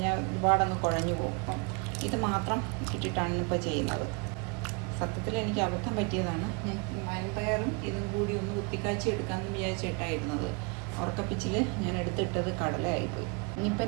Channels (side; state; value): left; quieter; 32.8 dB